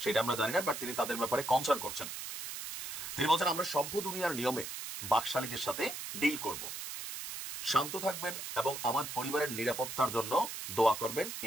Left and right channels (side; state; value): right; noise; hiss, 7 dB below the sound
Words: সেটা আমরা জানি না, বাট তিনি তাদের ব্যাপারে কনসার্ন করছেন। তিনি বলছেন আমরা সভ্য দুনিয়ার নিয়মে বাকশালীদের সাথে ডিল করব, শান্ত থাকবেন এবং আমার পরিবারের নিরাপত্তার জন্য দোয়া করবেন,